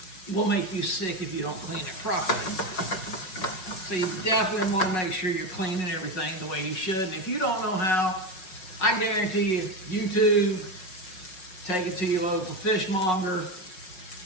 will make you sick if you don't clean it properly. So you definitely want to make sure you're cleaning everything the way you should. And if you don't know how, I guarantee you, YouTube, take it to your local fishmonger.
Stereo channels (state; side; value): late; right; 5.5 ms